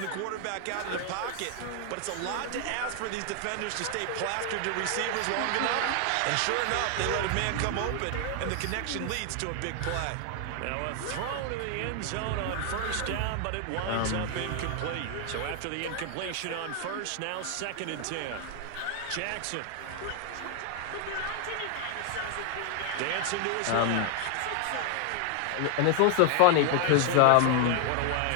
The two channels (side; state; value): both; different; correlation 0.00